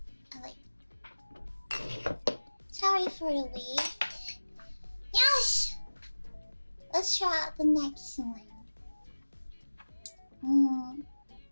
Sorry for the wait. Yes! Let's try out the next one.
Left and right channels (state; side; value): inverted; both; correlation -1.00